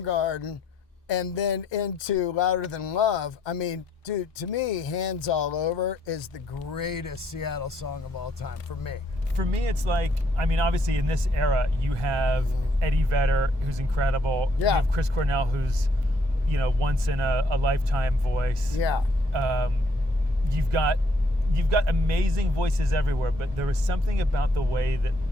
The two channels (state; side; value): normal; both; correlation 0.69